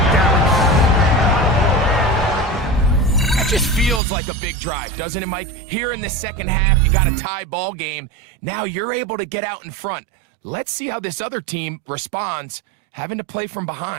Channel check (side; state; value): left; drops out; at 4.0 s